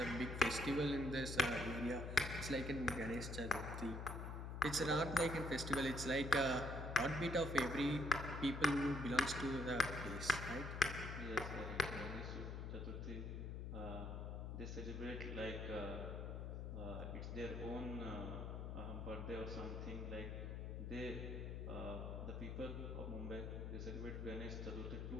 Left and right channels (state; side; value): noise; left; hum, 5 dB below the sound